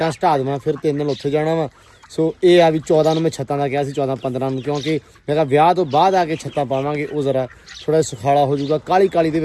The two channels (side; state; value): both; identical; correlation 1.00